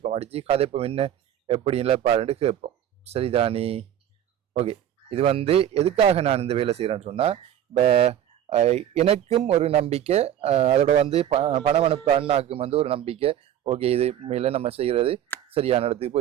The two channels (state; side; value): quieter; left; 10.7 dB